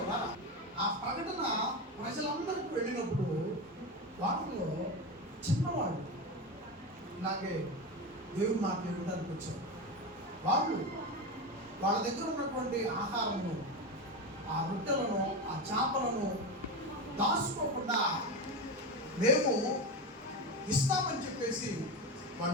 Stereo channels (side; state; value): both; normal; correlation 0.19